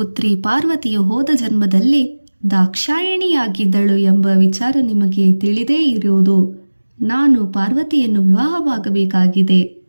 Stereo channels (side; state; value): both; inverted; correlation -1.00